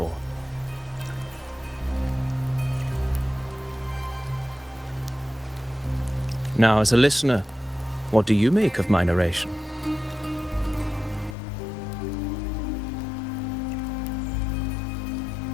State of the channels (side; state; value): right; drops out; at 11.4 s